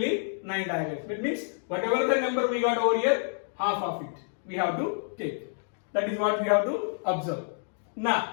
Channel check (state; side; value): silent; right; digital silence